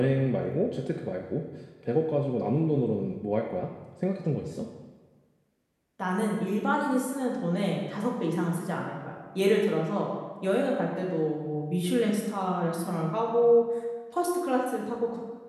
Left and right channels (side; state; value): both; identical; correlation 1.00